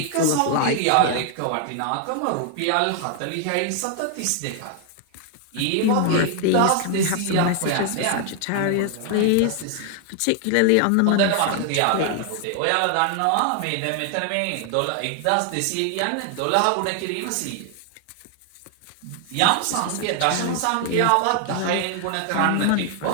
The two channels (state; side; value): different; both; correlation 0.00